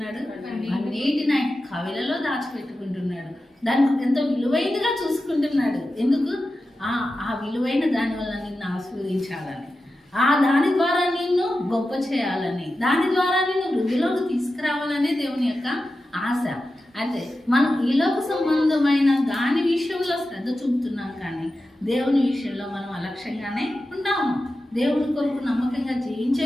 అన్నిటిని ఆయన కవిలలో దాచిపెట్టుకుంటున్నాడు. దానికి ఎంతో విలువైనదిగా చూసుకుంటున్నాడు. ఎందుకు? ఆ విలువైన దాని వల్ల నిన్ను ఆశీర్వదించాలని, దాని ద్వారా నిన్ను గొప్ప చేయాలని, దాని ద్వారా నిన్ను వృద్ధిలోకి తీసుకురావాలనే దేవుని యొక్క ఆశ. అయితే మనం ఈలోక సంబంధమైన దాని విషయంలో శ్రద్ధ చూపుతున్నాం, కానీ దేవుని విషయంలో మనం అలక్ష్యంగానే ఉంటాము. దేవుని కొరకు నమ్మకంగా జీవించే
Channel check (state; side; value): normal; both; correlation 0.92